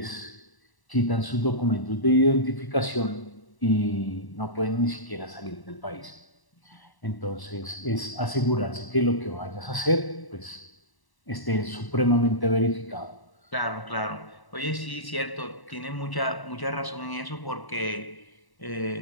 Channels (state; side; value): late; right; 1.0 ms